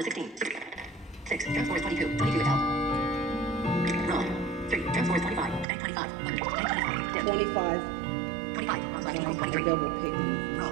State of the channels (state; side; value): drops out; left; at 5.7 s